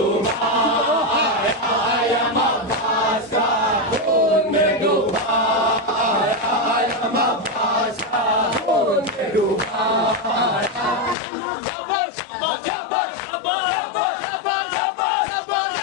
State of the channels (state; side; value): drops out; right; at 11.2 s